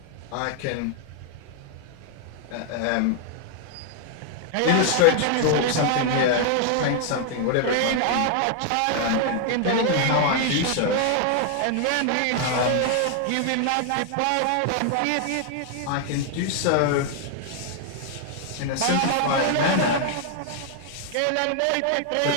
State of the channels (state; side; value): different; both; correlation 0.00